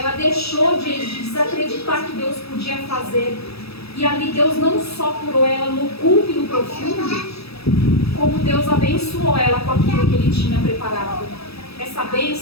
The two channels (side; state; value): right; late; 0.77 ms